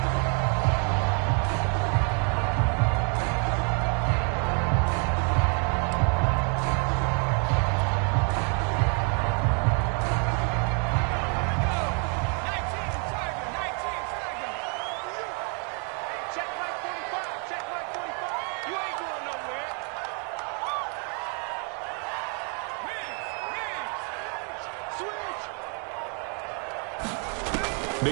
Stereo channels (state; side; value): quieter; left; 39.1 dB